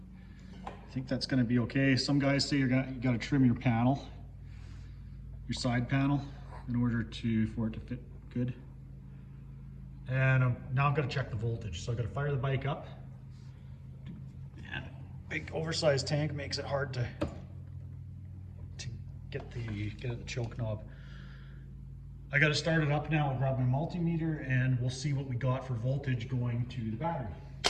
I think that's going to be okay. Some guys say you got to trim your panel, your side panel, in order for it to fit good. And now I'm going to check the voltage. So I've got to fire the bike up. And a big oversized tank makes it hard to get the choke knob. I got to start it up now. I'll grab my multimeter and we'll see what we got for voltage going to the battery.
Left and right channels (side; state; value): both; identical; correlation 1.00